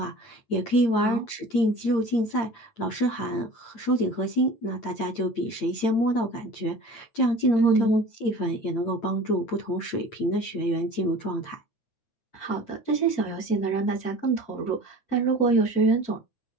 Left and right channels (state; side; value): late; right; 8.8 ms